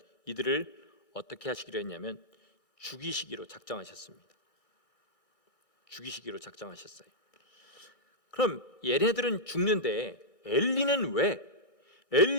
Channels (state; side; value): late; right; 1.6 ms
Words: 이들을 어떻게 하시기로 했냐면 죽이시기로 작정하셨습니다. 죽이시기로 작정하셨어요. 그럼 얘네들은 죽는데 엘리는 왜,